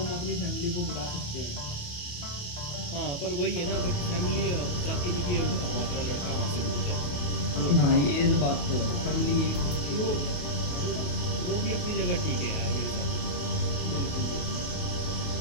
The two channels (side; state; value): right; late; 28 ms